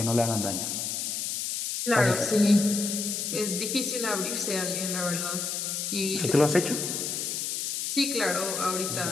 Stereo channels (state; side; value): noise; left; hiss, 2 dB below the sound